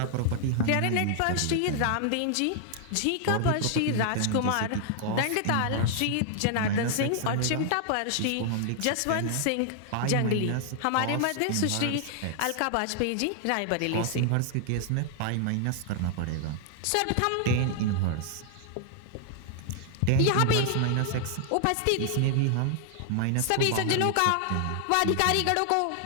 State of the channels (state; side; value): different; both; correlation 0.00